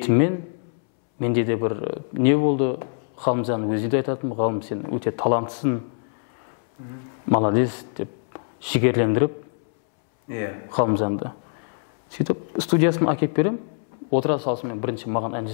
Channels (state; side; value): silent; right; 63 dB below the other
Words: менде де бір не болды, Ғалымжан өзі де айтатын, Ғалым, сен өте таланттысың, молодец деп жігерлендіріп Ғалымжанды. Сөйтіп студиясын әкеп берем, отыра салысымен бірінші маған ән